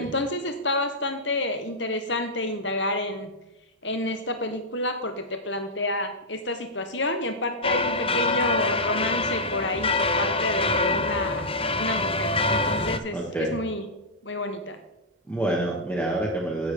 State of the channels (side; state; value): both; normal; correlation -0.08